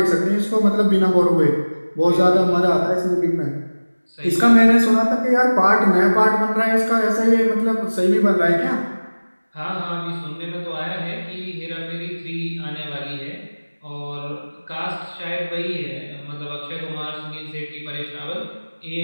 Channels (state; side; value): inverted; both; correlation -1.00